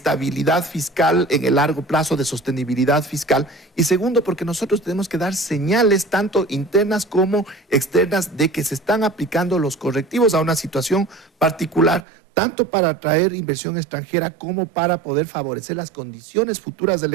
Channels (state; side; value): drops out; left; at 12.0 s